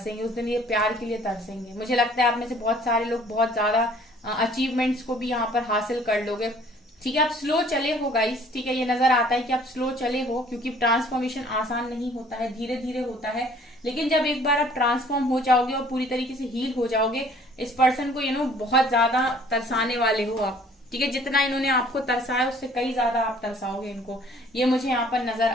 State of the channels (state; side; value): normal; both; correlation 0.55